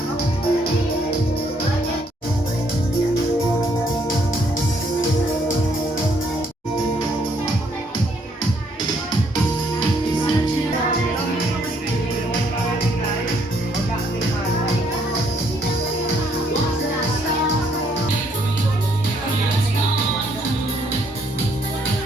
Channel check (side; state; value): both; normal; correlation 0.69